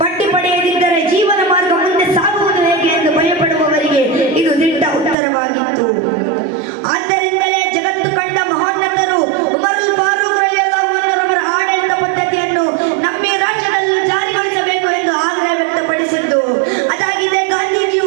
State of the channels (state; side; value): drops out; left; at 5.2 s